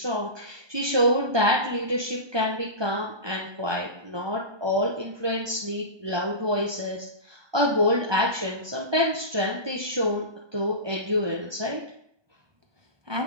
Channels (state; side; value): late; left; 1.2 ms